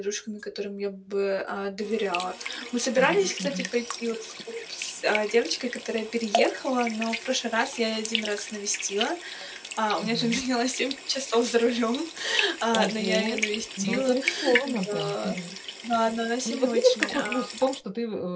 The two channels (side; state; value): both; identical; correlation 1.00